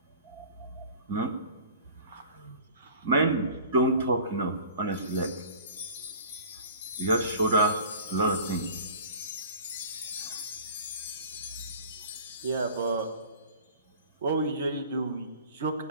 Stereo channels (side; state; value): both; inverted; correlation -0.44